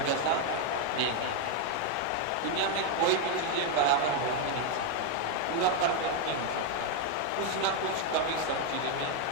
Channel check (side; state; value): both; different; correlation 0.01